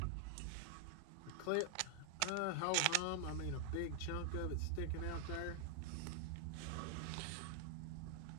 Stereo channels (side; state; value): both; different; correlation 0.00